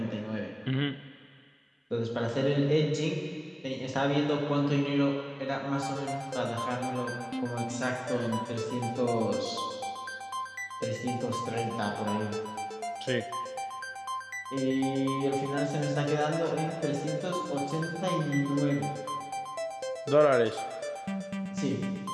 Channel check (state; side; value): identical; both; correlation 1.00